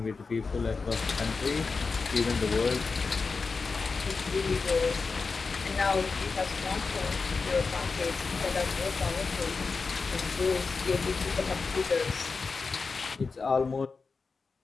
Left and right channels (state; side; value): quieter; right; 4.5 dB